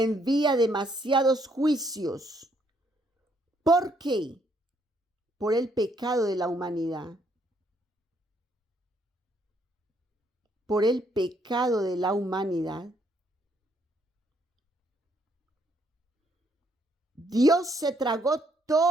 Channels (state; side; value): normal; both; correlation 0.70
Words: demasiados juicios. ¿Por qué? Por el pecado de la humanidad. Por el pecado de la humanidad. Dios se tragó